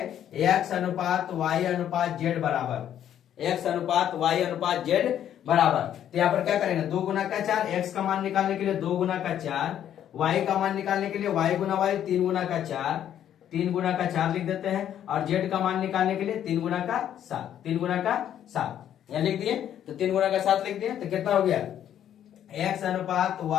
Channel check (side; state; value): right; quieter; 10.4 dB